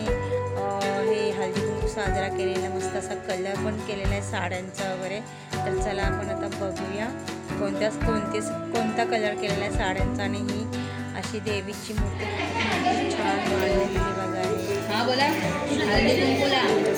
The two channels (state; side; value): identical; both; correlation 1.00